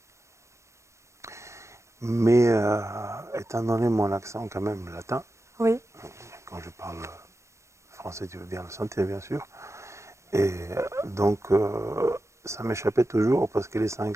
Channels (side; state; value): left; late; 0.14 ms